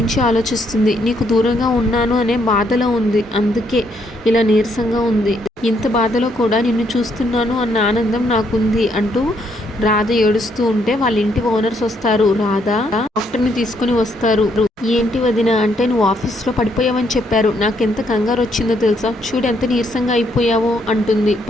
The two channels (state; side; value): normal; both; correlation 0.72